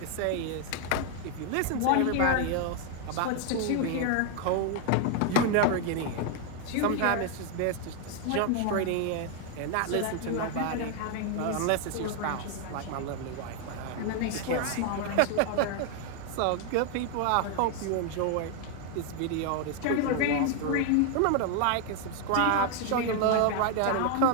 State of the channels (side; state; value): both; different; correlation 0.00